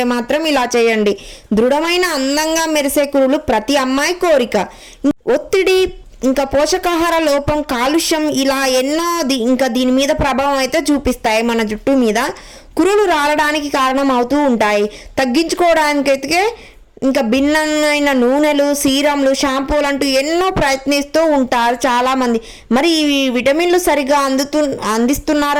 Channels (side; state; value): both; identical; correlation 1.00